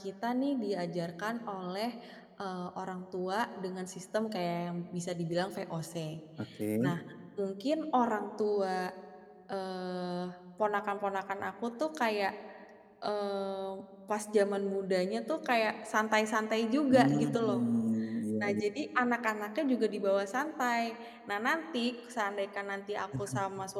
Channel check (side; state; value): both; identical; correlation 1.00